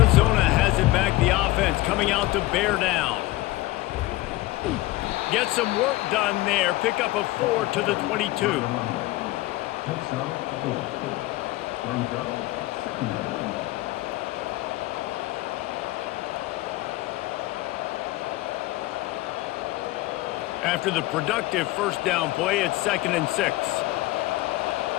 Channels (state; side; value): quieter; right; 18.4 dB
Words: has it back, the offense coming out to bear down. Get some work done there. Pick up a 4 to the 22. After the productive 1st down play, it's 2nd and 6.